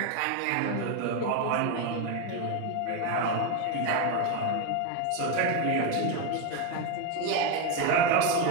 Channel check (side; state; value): both; different; correlation 0.03